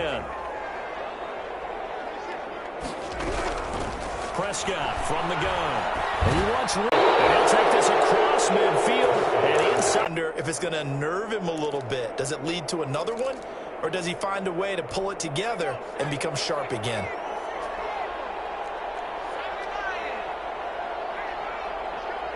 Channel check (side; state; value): both; identical; correlation 1.00